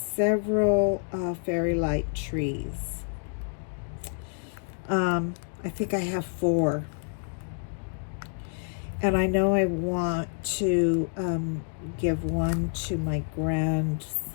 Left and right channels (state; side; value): silent; right; 59 dB below the other